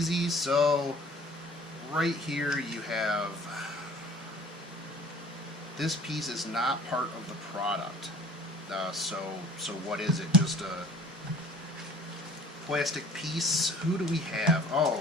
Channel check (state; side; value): normal; both; correlation 0.49